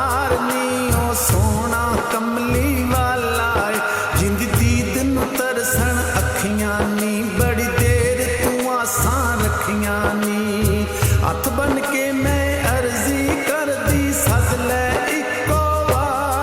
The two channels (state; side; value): identical; both; correlation 1.00